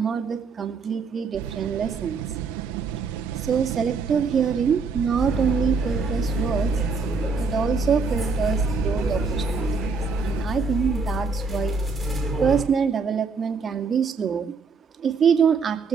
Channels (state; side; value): quieter; left; 4.8 dB